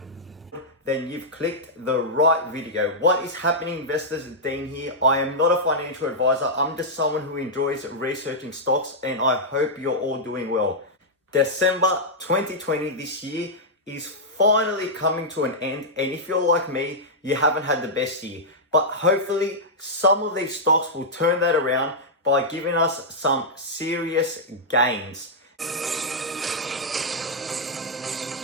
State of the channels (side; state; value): both; normal; correlation -0.08